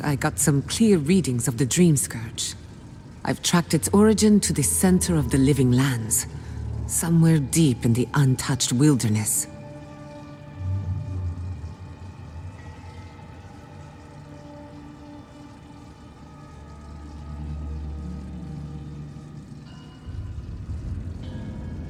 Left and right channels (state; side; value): identical; both; correlation 1.00